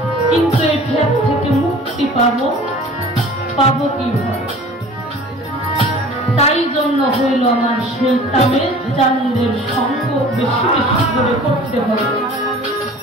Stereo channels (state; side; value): normal; both; correlation 0.45